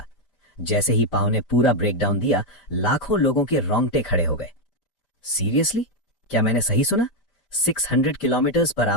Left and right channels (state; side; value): late; right; 5.1 ms